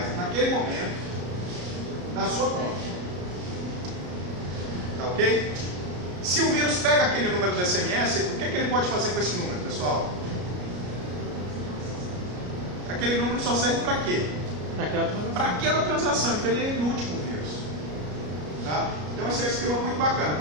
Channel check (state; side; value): late; left; 33 ms